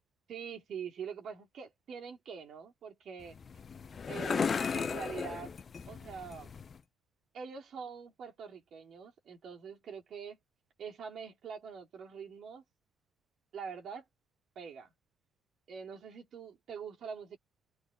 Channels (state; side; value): normal; both; correlation 0.76